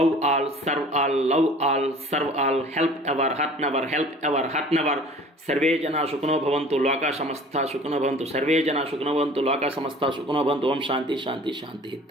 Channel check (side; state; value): both; normal; correlation 0.46